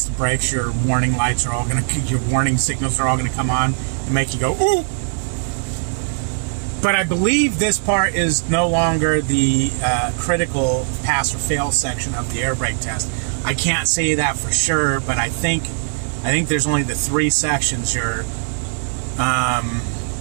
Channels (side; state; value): left; silent; digital silence